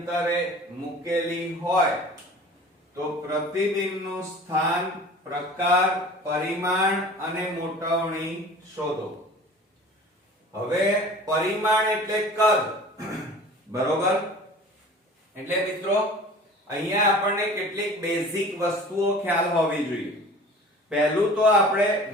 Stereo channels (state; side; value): normal; both; correlation 0.43